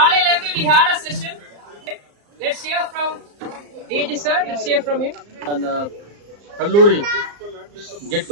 இருந்து we had a session. Let's hear from DG sir. Let's hear from him. அந்த கல்லூரி get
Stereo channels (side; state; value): left; late; 34 ms